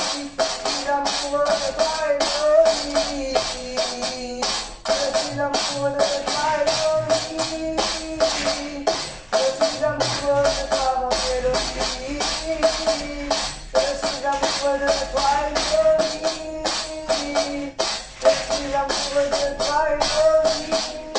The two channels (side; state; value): both; identical; correlation 1.00